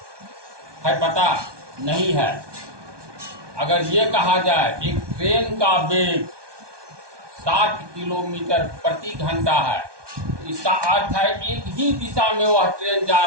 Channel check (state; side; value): late; left; 1.2 ms